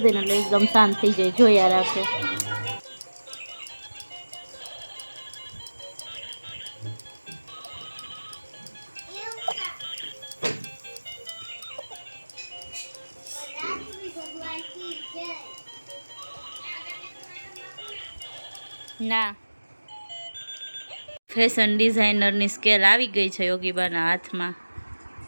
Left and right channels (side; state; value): both; inverted; correlation -1.00